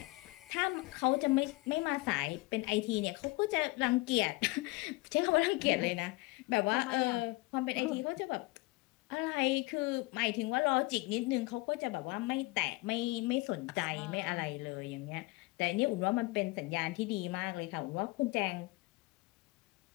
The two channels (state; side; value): quieter; right; 23.5 dB